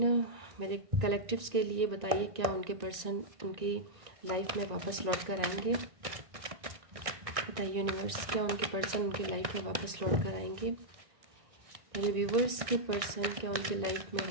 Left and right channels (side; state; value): left; late; 1.6 ms